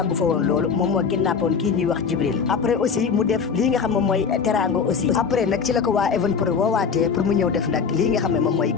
fa woon loolu moom moo kidnappoon kii ñuy wax Jibril après aussi mu def lii nga xam moom mooy Teranga aussi après nag ci la ko waa Even Prod woowaatee pour mu ñëw def nag lii nga xam ne moom mooy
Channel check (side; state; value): right; quieter; 6.0 dB